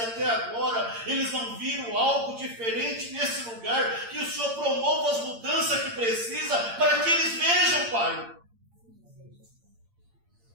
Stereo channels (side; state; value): left; late; 8.7 ms